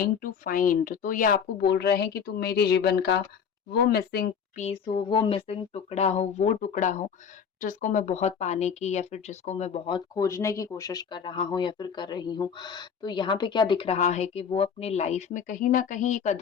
to find. तो ये आपको बोल रहे हैं कि तुम मेरे जीवन का वो मिसिंग पीस हो, वो मिसिंग टुकड़ा हो, वो टुकड़ा हो जिसको मैं बहुत पाने की या फिर जिसको मैं बहुत खोजने की कोशिश कर रहा हूँ या फिर कर रही हूँ। तो यहाँ पे क्या दिख रहा है कि वो अपनी लाइफ में कहीं ना कहीं एक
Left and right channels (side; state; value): right; quieter; 7.1 dB